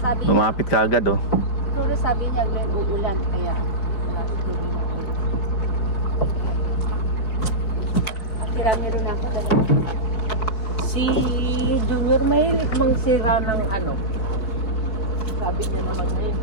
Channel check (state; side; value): late; right; 4.9 ms